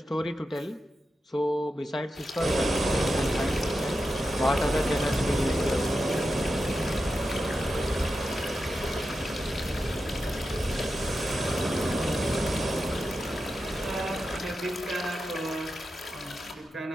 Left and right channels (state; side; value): normal; both; correlation 0.90